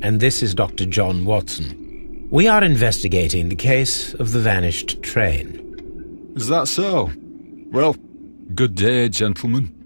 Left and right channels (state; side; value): inverted; both; correlation -1.00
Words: and this is Dr. John Watson. We are investigating the case of the vanished train. Is that so? Well, good day, gentlemen.